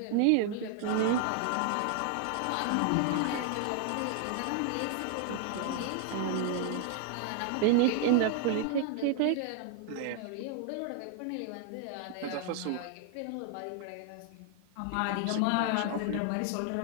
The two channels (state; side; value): different; both; correlation 0.00